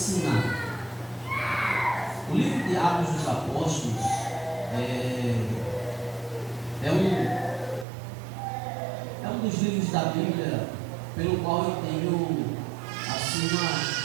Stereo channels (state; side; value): drops out; left; at 7.9 s